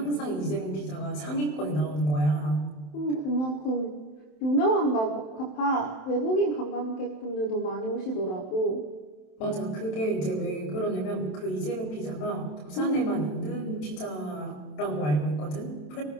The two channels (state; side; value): late; right; 27 ms